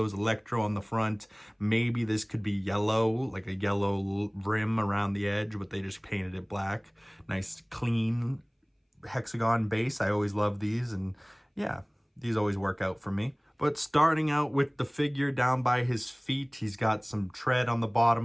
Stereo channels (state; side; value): identical; both; correlation 1.00